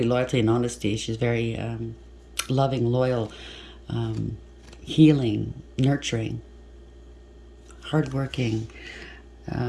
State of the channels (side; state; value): both; identical; correlation 1.00